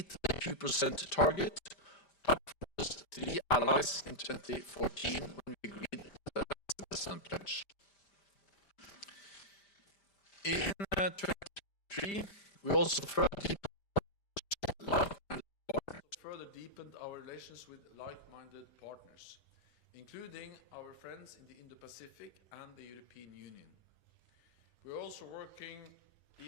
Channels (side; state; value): right; late; 5.1 ms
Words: the 2% target, up from just 3 allies in 2014 when we agreed the investment pledge. In 2023, we also further deepened our relations with like-minded partners, including our friends in the Indo-Pacific and the European Union. We are also working